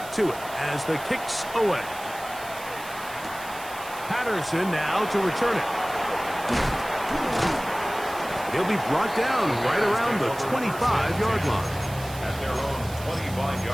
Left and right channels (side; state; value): right; noise; hiss, 16 dB below the sound